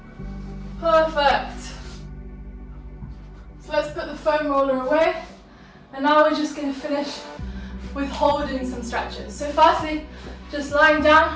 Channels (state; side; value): identical; both; correlation 1.00